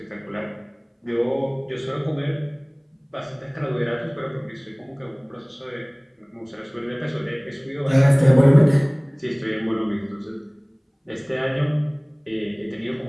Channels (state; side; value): identical; both; correlation 1.00